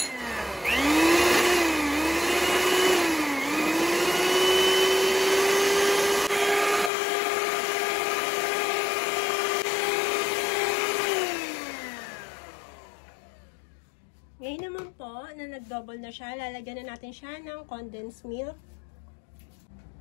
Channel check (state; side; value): drops out; right; at 6.9 s